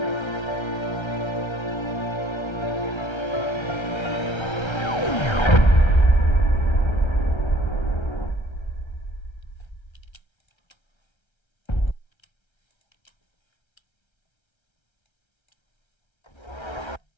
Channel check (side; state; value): right; late; 1.3 ms